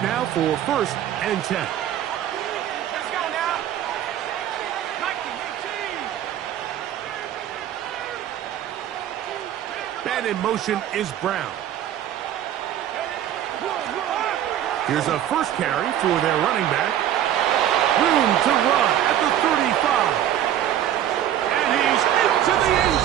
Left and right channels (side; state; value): left; quieter; 11.2 dB